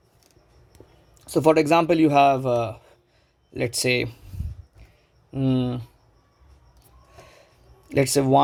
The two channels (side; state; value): both; identical; correlation 1.00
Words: So for example, you have let's say 1,